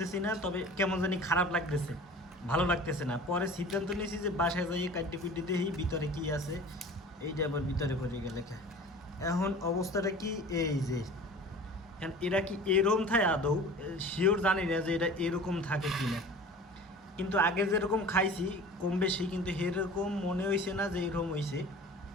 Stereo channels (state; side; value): normal; both; correlation 0.41